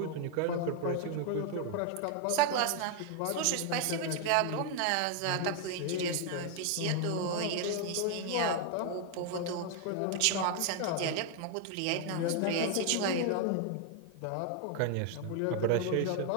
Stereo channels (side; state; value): both; different; correlation 0.00